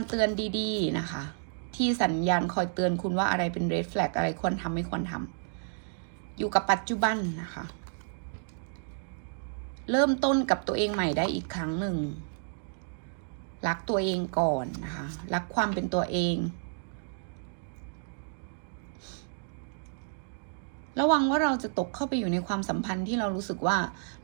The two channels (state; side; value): silent; left; digital silence